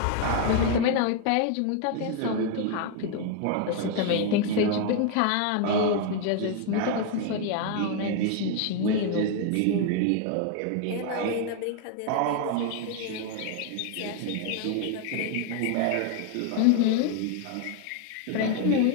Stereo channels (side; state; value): both; different; correlation 0.01